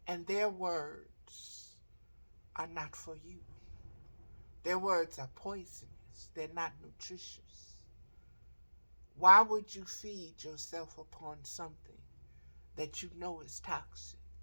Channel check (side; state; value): both; inverted; correlation -1.00